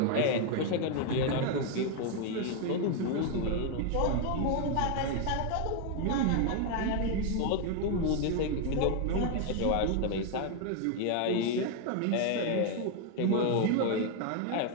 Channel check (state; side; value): different; both; correlation 0.01